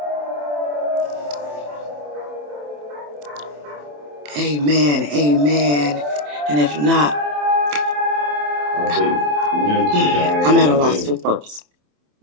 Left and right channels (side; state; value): left; late; 27 ms